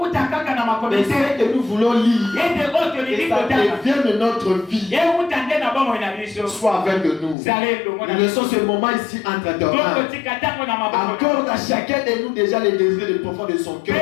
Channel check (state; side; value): drops out; right; at 7.4 s